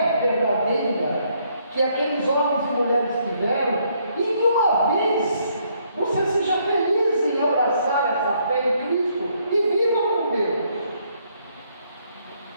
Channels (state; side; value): inverted; both; correlation -0.70